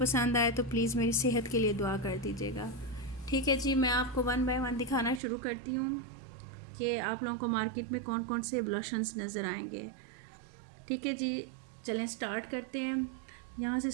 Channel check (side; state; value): left; drops out; at 5.2 s